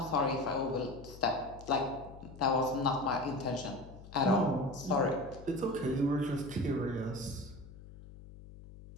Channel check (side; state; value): left; noise; hum, 17 dB below the sound